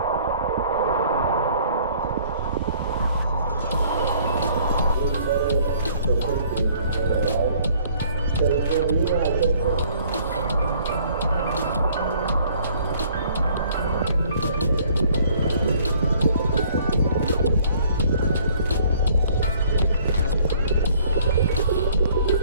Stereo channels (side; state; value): both; inverted; correlation -0.58